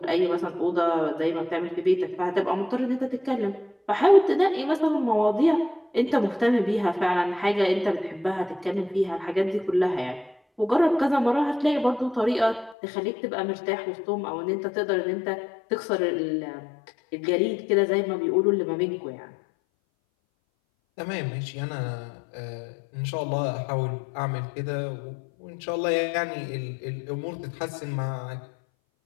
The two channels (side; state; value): right; drops out; at 12.8 s